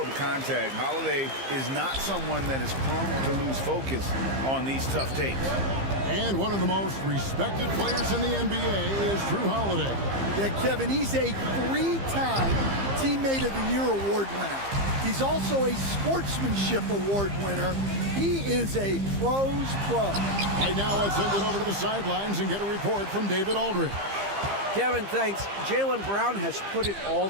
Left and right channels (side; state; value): left; late; 15 ms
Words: contact. Holiday is not someone that is prone to lose focus on these tough takes. And one of the most respected players in the NBA is Drew Holiday. Yeah, Kevin, he's a 3-time Teammate of the Year award winner. He's also a Sportsmanship Award winner. He is a pro's pro. Right now, let's send it over to the sidelines and get a report from David Aldridge. Kevin, thanks. Jaylen Brown has put it all